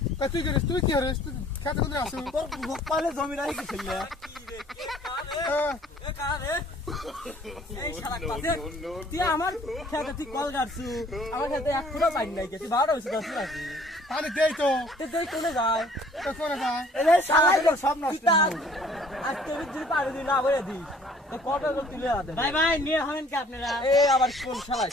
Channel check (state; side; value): normal; both; correlation 0.56